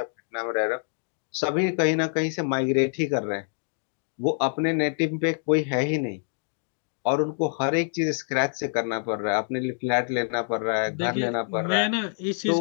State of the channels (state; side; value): silent; right; 61 dB below the other